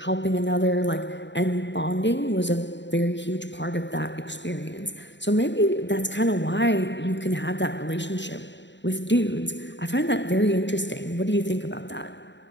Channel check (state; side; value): late; right; 0.52 ms